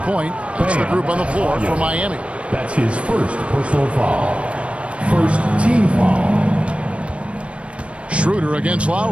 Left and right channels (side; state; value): left; late; 0.061 ms